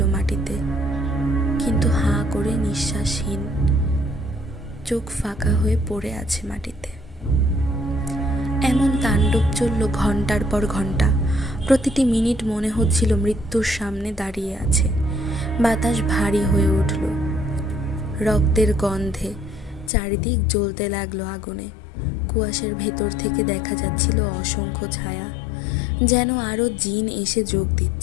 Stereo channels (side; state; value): right; drops out; at 19.9 s